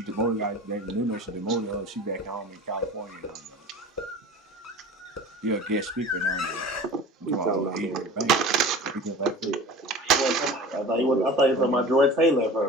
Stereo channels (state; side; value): normal; both; correlation 0.38